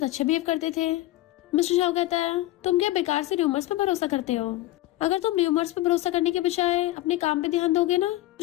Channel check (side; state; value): right; quieter; 16.6 dB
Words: अच्छे बिहेव करते थे। मिस्टर शाह कहता है तुम क्या बेकार से र्यूमर्स पे भरोसा करते हो, अगर तुम र्यूमर्स पे भरोसा करने के बजाय अपने काम पे ध्यान दोगे ना